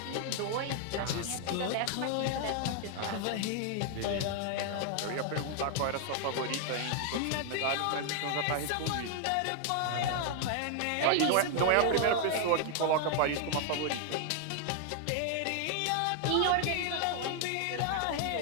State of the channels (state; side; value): different; both; correlation 0.00